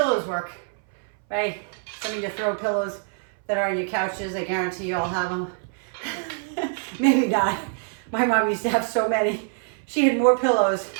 work, right? Some of you throw pillows that are on your couches. I guarantee you all have them. Maybe not. My mom used to have so many. She had more pillows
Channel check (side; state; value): left; silent; 61 dB below the other